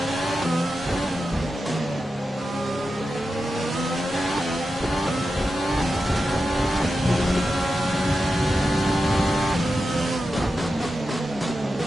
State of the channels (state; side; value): normal; both; correlation 0.90